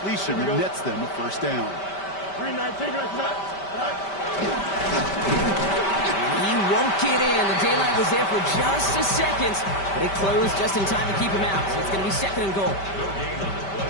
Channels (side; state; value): right; late; 5.1 ms